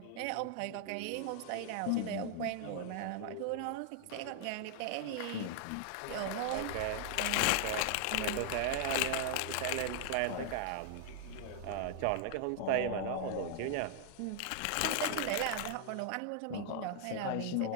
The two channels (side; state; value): both; different; correlation 0.00